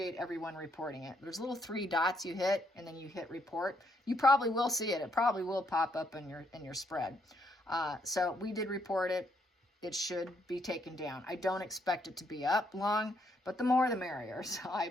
everyone reporting it. There's little 3 dots you hit, and then you hit report. You probably will see it. It probably will pop up in your spread. So we did report it. It should be taken down. I don't expect it to be up long, but the more the merrier. So I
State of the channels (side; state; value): both; normal; correlation 0.74